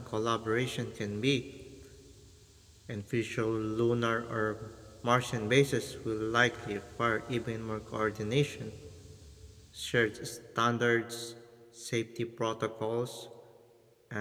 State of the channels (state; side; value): identical; both; correlation 1.00